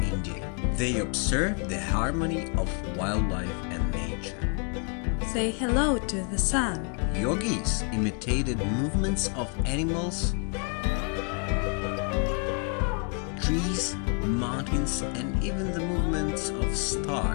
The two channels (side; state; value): right; quieter; 39.4 dB